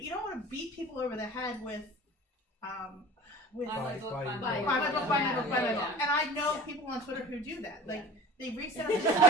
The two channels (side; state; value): both; normal; correlation 0.40